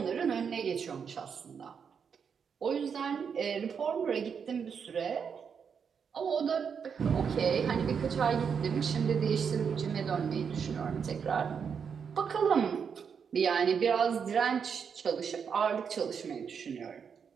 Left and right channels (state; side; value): quieter; left; 6.7 dB